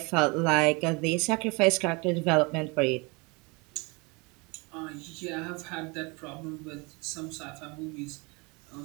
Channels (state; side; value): quieter; left; 28.1 dB